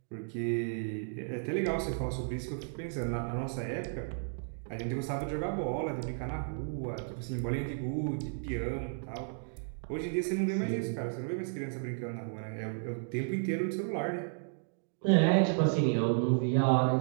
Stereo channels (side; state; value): left; silent; digital silence